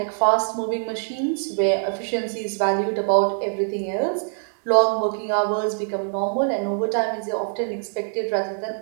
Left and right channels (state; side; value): silent; left; digital silence